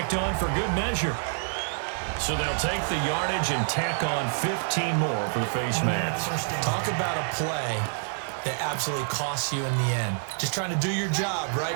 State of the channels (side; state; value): left; silent; digital silence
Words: on for good measure. So they'll take the yardage and tack on 15 more for the face mask. Talk about a play that absolutely costs you in the end. Just trying to do your job, right?